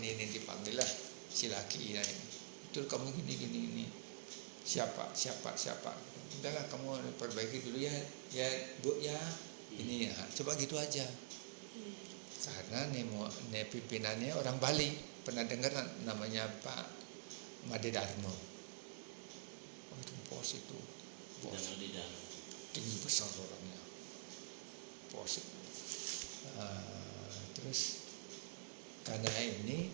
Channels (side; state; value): left; silent; digital silence